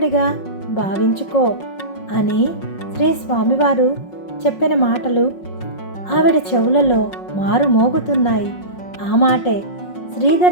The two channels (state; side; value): late; right; 5.5 ms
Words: భావించుకో అని శ్రీ స్వామివారు చెప్పిన మాటలు ఆవిడ చెవులలో మారుమోగుతున్నాయి. ఆ మాటే